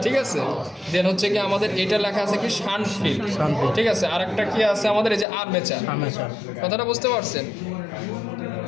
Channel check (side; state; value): right; drops out; at 5.2 s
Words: ঠিক আছে। দেন হচ্ছে কি আমাদের এটা লেখা আছে কি শান্ট ফিল, ঠিক আছে। আরেকটা কি আছে আমাদের এই যে আর্মেচার। কথাটা বুঝতে পারছেন?